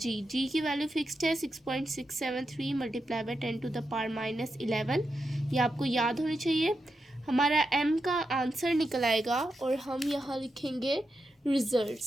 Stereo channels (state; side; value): normal; both; correlation 0.87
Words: की वैल्यू फिक्स्ड है 6.673 multiply by 10 to the power -11. ये आपको याद होनी चाहिए. हमारा m का आंसर निकल आएगा और हम यहाँ लिखेंगे